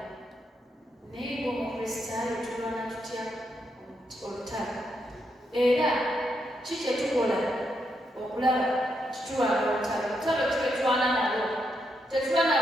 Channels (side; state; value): both; normal; correlation 0.80